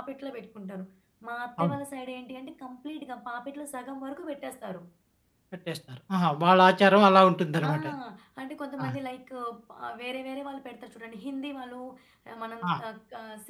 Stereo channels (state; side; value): identical; both; correlation 1.00